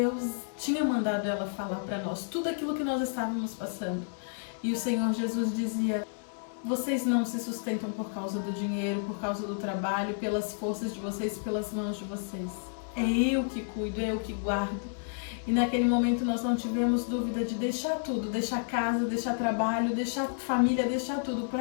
tinha mandado ela falar para nós, tudo aquilo que nós estávamos passando. E o Senhor Jesus dizia: vocês não se sustentam por causa do dinheiro, por causa do trabalho, pelas forças de vocês, pelas mãos de vocês. É eu que cuido, é eu que guardo. E naquele momento nós não tivemos dúvida de deixar tudo, deixar casa, deixar trabalho, deixar família, deixar tudo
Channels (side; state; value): right; silent; 57 dB below the other